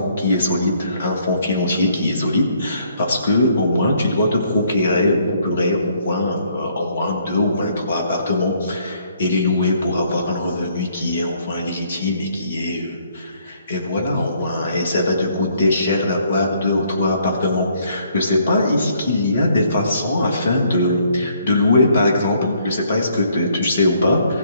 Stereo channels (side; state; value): both; inverted; correlation -0.67